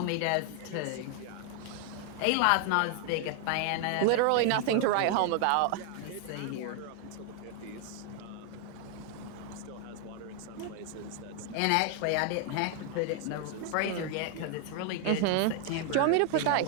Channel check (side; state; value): both; different; correlation 0.00